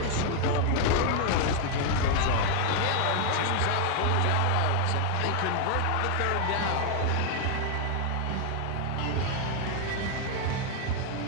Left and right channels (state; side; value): different; both; correlation 0.00